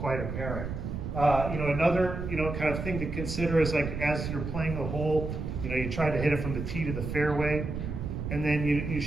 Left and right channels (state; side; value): noise; right; rumble, 5 dB below the sound